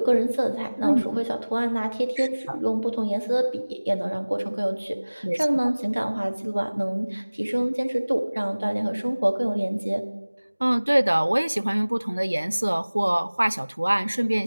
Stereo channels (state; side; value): inverted; both; correlation -1.00